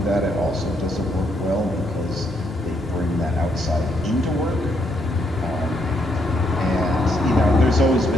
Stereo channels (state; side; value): normal; both; correlation 0.75